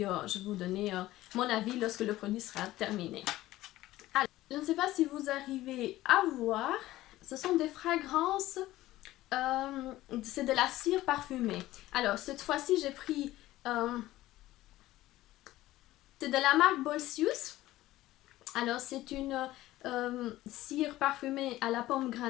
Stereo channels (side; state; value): right; quieter; 16.1 dB